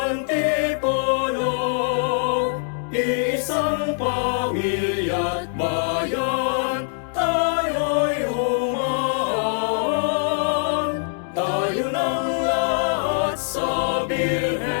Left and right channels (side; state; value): right; silent; 63 dB below the other